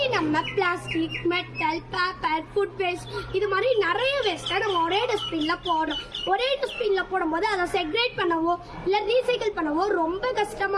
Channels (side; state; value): both; identical; correlation 1.00